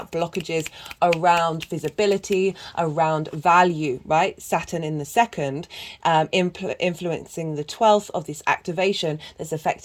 blockages around visibility, around value, right? Saturn in the second, influencing the 12th of this activation that's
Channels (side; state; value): both; identical; correlation 1.00